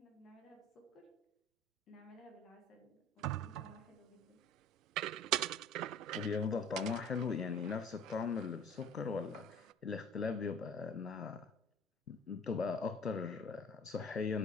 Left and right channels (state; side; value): normal; both; correlation 0.47